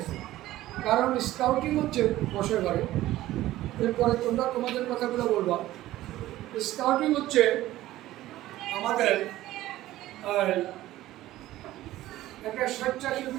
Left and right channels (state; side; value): quieter; left; 15.4 dB